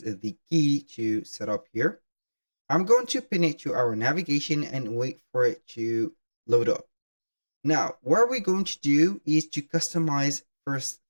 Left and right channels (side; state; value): both; inverted; correlation -1.00